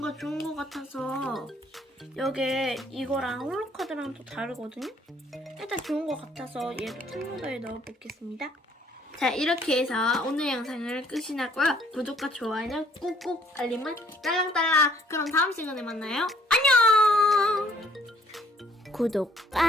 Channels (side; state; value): both; normal; correlation 0.63